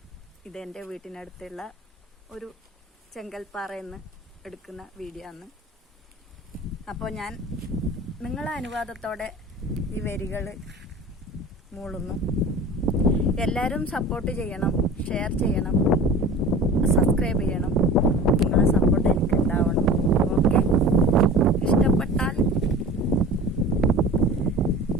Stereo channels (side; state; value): both; normal; correlation 0.38